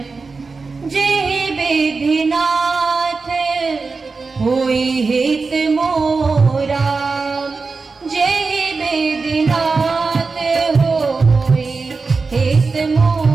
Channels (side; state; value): left; quieter; 4.3 dB